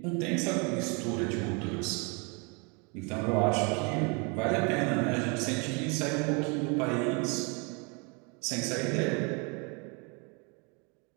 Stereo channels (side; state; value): left; quieter; 32.6 dB